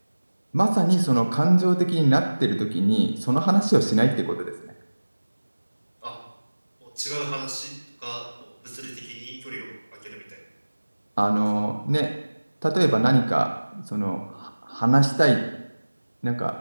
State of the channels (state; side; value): inverted; both; correlation -1.00